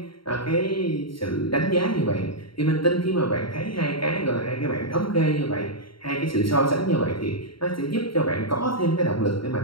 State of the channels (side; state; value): right; late; 0.73 ms